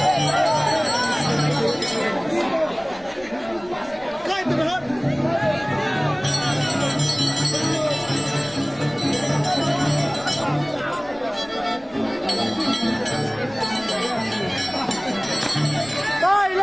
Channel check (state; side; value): noise; left; rumble, 24 dB below the sound